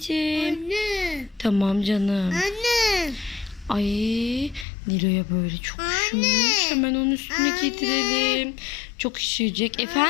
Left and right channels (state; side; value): drops out; right; at 4.7 s